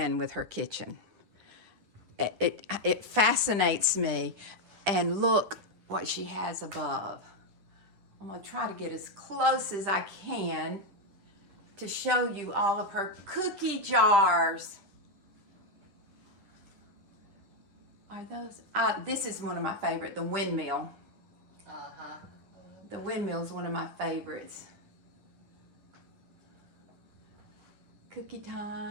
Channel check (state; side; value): late; left; 10 ms